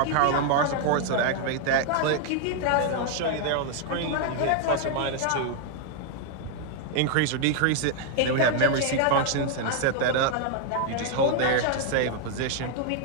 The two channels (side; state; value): both; different; correlation 0.00